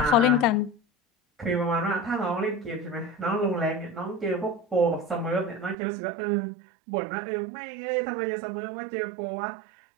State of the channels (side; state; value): left; drops out; at 5.8 s